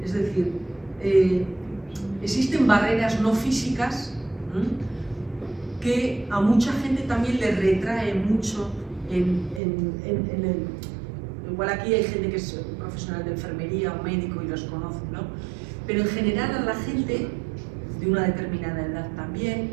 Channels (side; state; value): left; drops out; at 9.6 s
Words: Es decir, existen barreras no físicas que a mucha gente también le retrae mucho igual aquí hay gente que es profesional de enfermería o médico y los conoce, ¿no? Pero en general a la gente de una determinada edad también,